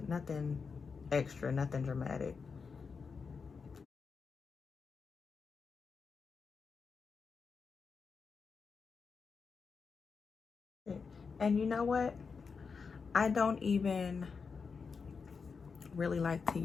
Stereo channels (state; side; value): quieter; right; 5.3 dB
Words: Nothing extra, nothing dramatic. And you know what? I don't even really like to